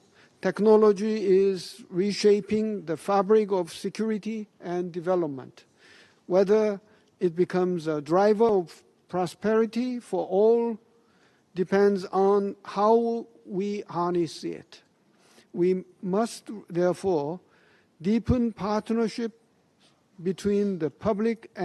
Technology is reshaping the fabric of security and development. Whether it becomes a driver of prosperity for all depends on how we harness it. We must therefore deepen partnership between the public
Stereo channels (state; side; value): identical; both; correlation 1.00